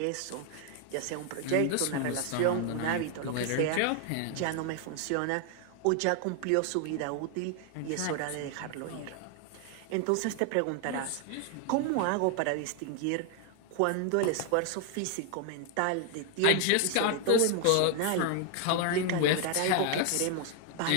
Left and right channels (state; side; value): different; both; correlation 0.01